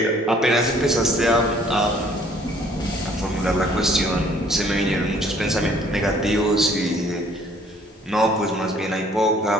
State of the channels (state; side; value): normal; both; correlation 0.59